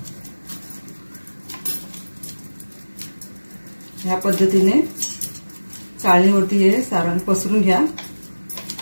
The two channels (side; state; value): both; inverted; correlation -1.00